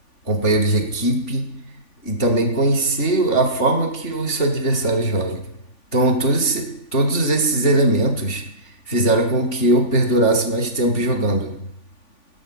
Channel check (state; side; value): late; right; 3.5 ms